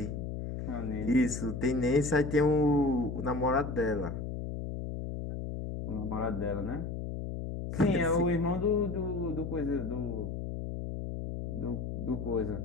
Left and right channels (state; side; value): noise; left; hum, 5 dB below the sound